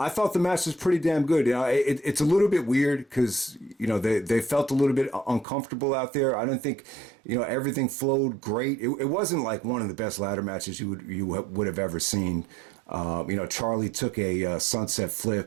thought the match was pretty damn good. It's a little bit weird because, they felt a little bit uncomfortable out there. I didn't think, everything flowed great. It wasn't like one of the best ladder matches you would have ever seen. Charlie took a sunset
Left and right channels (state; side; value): drops out; left; at 5.5 s